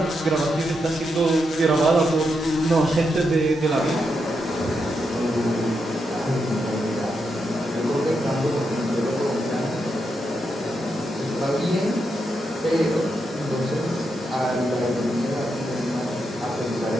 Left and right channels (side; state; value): both; normal; correlation 0.83